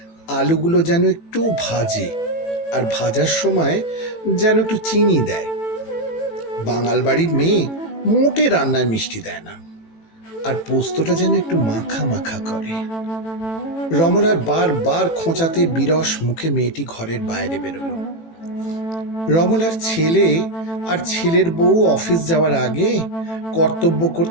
আলুগুলো যেন একটু ভাজে, আর ভাজার সময় যেন একটু চিনি দেয়। বাঙাল বাড়ির মেয়ে মোটে রান্নায় মিষ্টি দেয় না, আর পোস্তটা যেন একটু মাখা মাখা করে। রমলার বারবার খোঁচাতে বিরস মুখে মেয়েটি ঘরের বাইরে বেরোলো। রমলার ছেলে আর ছেলের বউ অফিস যাওয়ার আগে কর্তব্য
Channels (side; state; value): right; late; 18 ms